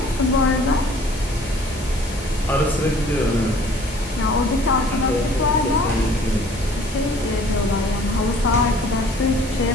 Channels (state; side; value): normal; both; correlation 0.53